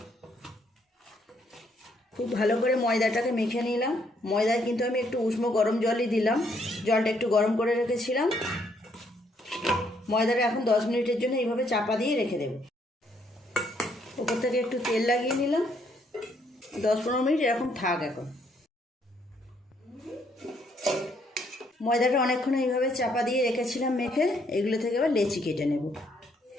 খুব ভালো করে ময়দাটাকে মেখে নিলাম। ময়দায় কিন্তু আমি একটু উষ্ণ গরম জলই দিলাম, জলটা একটু গরম করে রেখেছিলাম। ময়দাটা এখন 10 মিনিটের জন্য এইভাবে চাপা দিয়ে রেখে দেব। ওপর থেকে একটু তেল লাগিয়ে নিলাম। 10-15 মিনিট এরকম থাক। এখন ময়দাটা অনেকক্ষণ এইভাবে চাপা দিয়ে রেখেছিলাম মেখে, এগুলো থেকে এবার লেচি কেটে নেব।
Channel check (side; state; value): both; normal; correlation 0.70